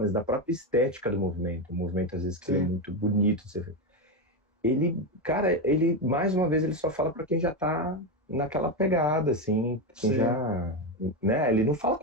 da própria estética do movimento. O movimento, às vezes, que ele é Sim, muito bonito de ser feito. Ele, cara, ele, mais uma vez, ele só fala para quem já tá naquela pegada, assim, quem sim. já, né? Ele não fala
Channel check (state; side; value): normal; both; correlation 0.11